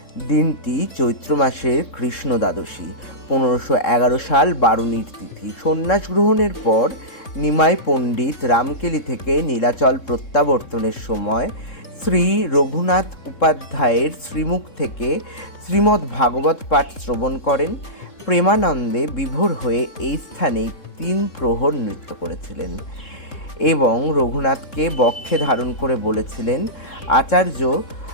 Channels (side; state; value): right; late; 3.7 ms